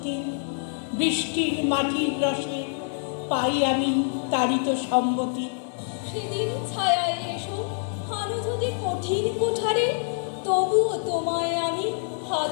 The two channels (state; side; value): silent; right; 61 dB below the other